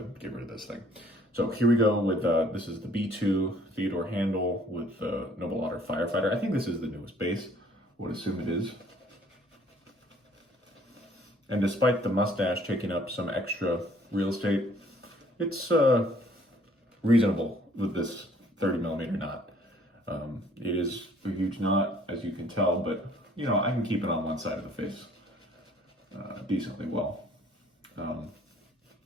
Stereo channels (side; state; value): both; normal; correlation 0.59